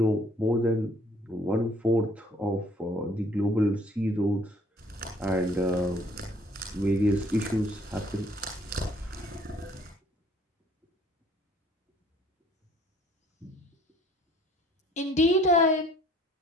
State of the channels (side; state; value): both; normal; correlation 0.59